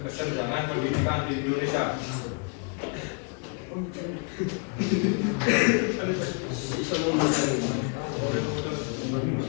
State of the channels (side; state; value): right; quieter; 38.7 dB